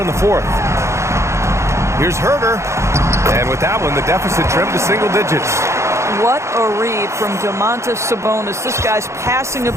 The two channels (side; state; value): left; late; 0.14 ms